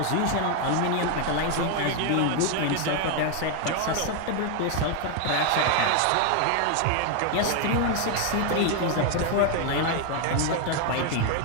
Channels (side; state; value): both; different; correlation 0.01